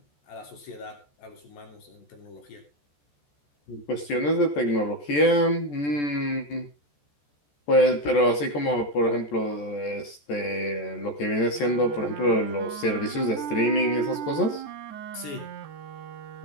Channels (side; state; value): right; late; 14 ms